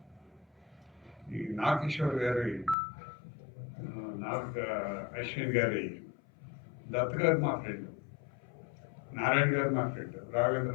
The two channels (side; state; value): right; drops out; at 2.8 s